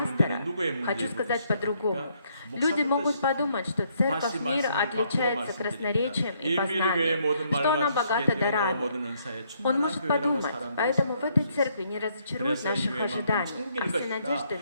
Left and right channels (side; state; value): both; inverted; correlation -0.71